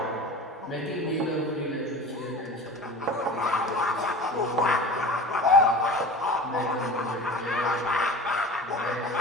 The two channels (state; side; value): normal; both; correlation 0.36